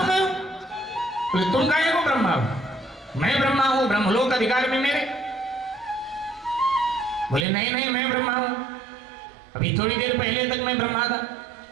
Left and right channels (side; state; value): left; drops out; at 7.5 s